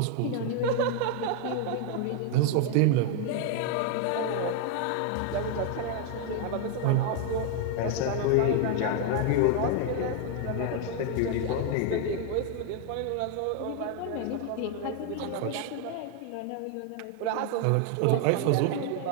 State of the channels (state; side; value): different; both; correlation 0.00